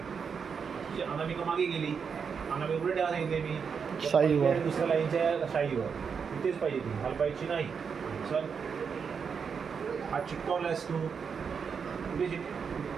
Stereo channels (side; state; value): left; quieter; 6.2 dB